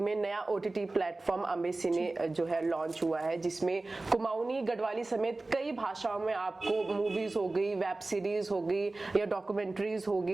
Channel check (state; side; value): quieter; left; 3.1 dB